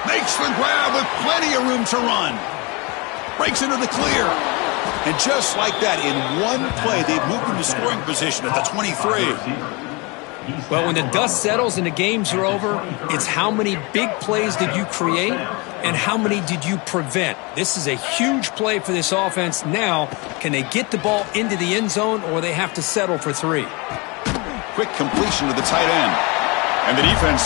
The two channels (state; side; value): quieter; right; 27.8 dB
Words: Makes the grab with plenty of room to run. Breaks into the clear. And just like that, in one play, they've moved into scoring position at the 23. Well, when the dust settles and the games are over, it's how many big plays did you create and how many did you prevent. This is a huge play for this offense. Now, can they get the ball into the end zone or they have to settle for 3? Quick completion to the tight end. And the defense